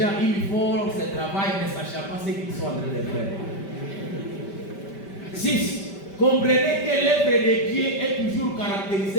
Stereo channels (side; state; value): right; late; 5.1 ms